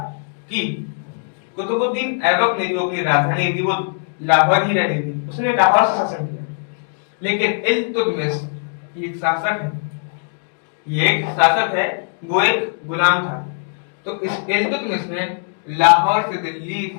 कि कुतुबुद्दीन ऐबक ने जो अपनी राजधानी थी वो लाहौर ही रहनी थी, उसने लाहौर से शासन किया। लेकिन इल्तुतमिश एक शासक है, ये एक शासक है, वो एक गुलाम था। तो इस इल्तुतमिश ने लाहौर से दिल्ली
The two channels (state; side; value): silent; right; digital silence